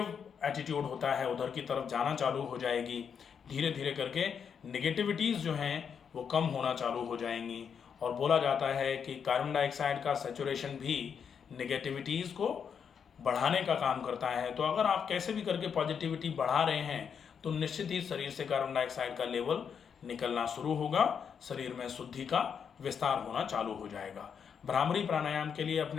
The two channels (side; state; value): right; quieter; 7.1 dB